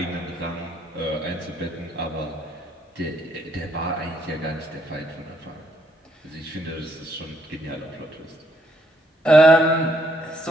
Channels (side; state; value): both; normal; correlation 0.72